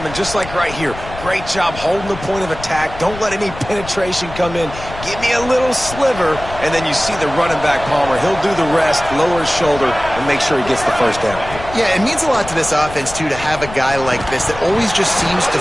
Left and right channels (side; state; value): left; noise; rumble, 12 dB below the sound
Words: just like right here. Great job holding the point of attack. Don't let any penetration come in. Give me a little sliver, and then you see the running back, Palmer. He'll do the rest, lower his shoulder, and make sure he gets the first down. Yeah, it means a lot to this offense, too, to have a guy like this that always just seems to